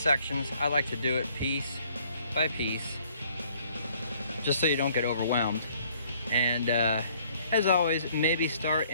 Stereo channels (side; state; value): both; inverted; correlation -0.62